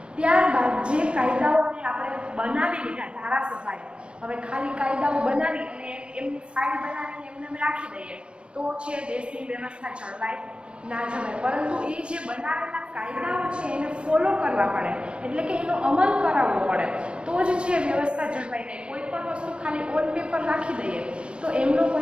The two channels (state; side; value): late; left; 0.056 ms